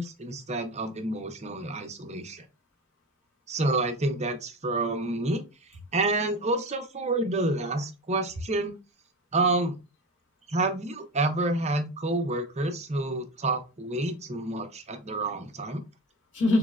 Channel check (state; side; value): normal; both; correlation 0.26